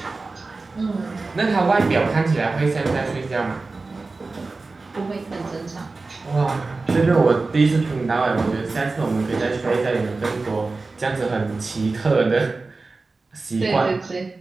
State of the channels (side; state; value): left; quieter; 3.7 dB